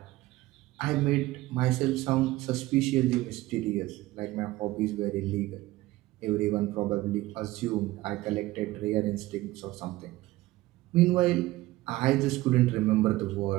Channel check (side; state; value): left; quieter; 18.0 dB